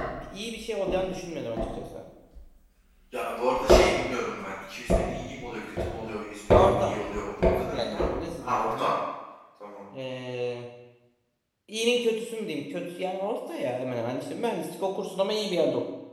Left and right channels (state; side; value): identical; both; correlation 1.00